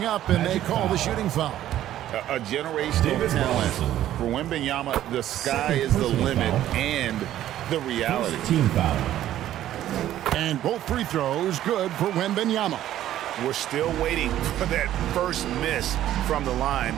up, and they call the shooting foul. A generational talent. For Wembanyama, the sky is the limit and the reality. Team foul. And both free throws good for Wembanyama. We're still waiting for that first miss from the line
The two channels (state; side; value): quieter; left; 12.6 dB